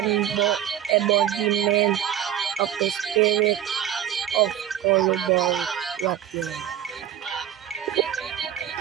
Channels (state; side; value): quieter; left; 10.9 dB